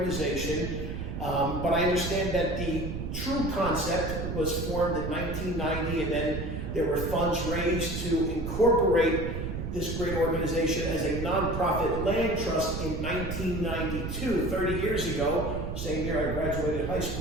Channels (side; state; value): right; noise; rumble, 5 dB below the sound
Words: But I understand that the true concept was formed in 1990, and then there were funds raised to incorporate this great organization as a nonprofit land trust in 1992, 30 years ago. Same year I graduated high